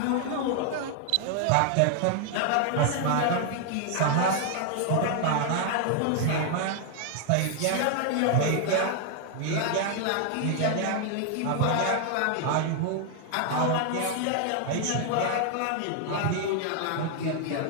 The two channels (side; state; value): both; different; correlation 0.00